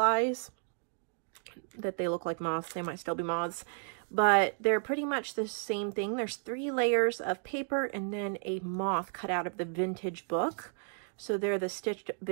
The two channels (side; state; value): left; silent; 56 dB below the other